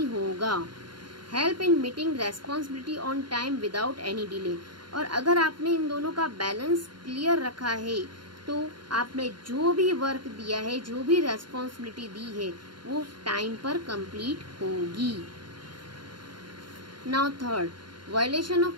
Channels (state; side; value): late; left; 0.72 ms